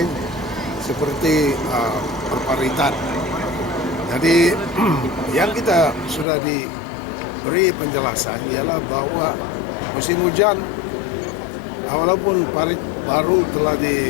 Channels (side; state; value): right; drops out; at 6.2 s